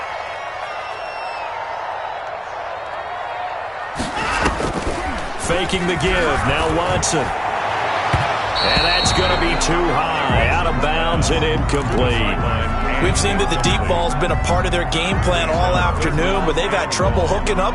Faking the give. Now Watson. And that's going to be too high. Out of bounds and incomplete. We've seen that the deep ball's been a part of their game plan all afternoon, but they've had trouble hooking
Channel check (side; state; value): both; identical; correlation 1.00